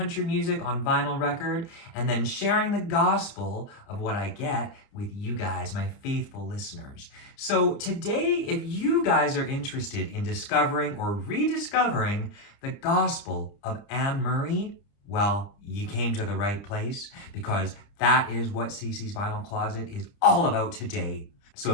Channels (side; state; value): right; late; 30 ms